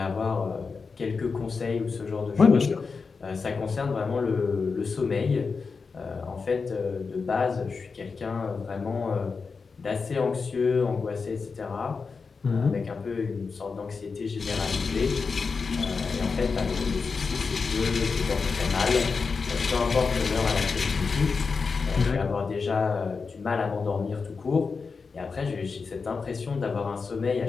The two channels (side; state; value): right; quieter; 4.9 dB